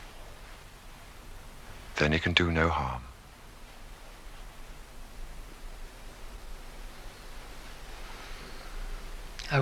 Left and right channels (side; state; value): both; identical; correlation 1.00